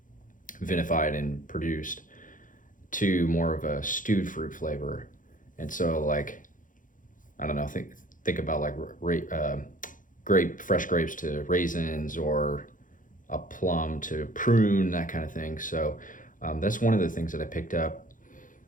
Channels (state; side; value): late; right; 0.38 ms